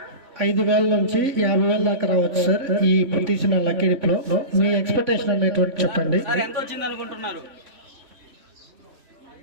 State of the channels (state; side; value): late; left; 3.6 ms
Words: 5,000 నుంచి 50,000 దాకా రావచ్చు సార్ ఈ తీసిన లక్కీ డిప్ లో. మీ ఎక్స్పెక్టేషన్ అనేటువంటి చెప్పండి. ఎంత వచ్చింది అనుకుంటున్నారు?